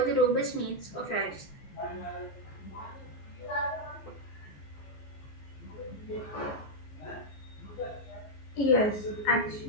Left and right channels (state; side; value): late; right; 15 ms